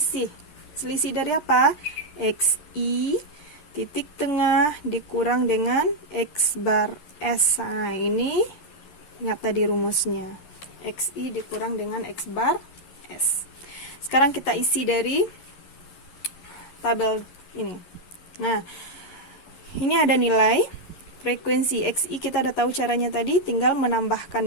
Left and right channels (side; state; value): right; late; 11 ms